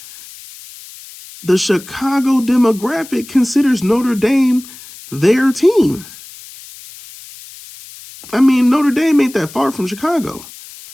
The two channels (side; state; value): left; noise; hiss, 18 dB below the sound